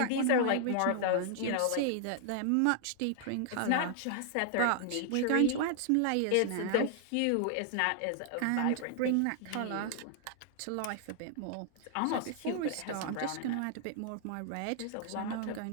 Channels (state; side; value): different; both; correlation 0.00